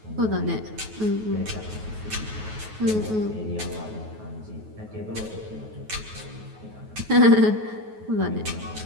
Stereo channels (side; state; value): left; late; 9.3 ms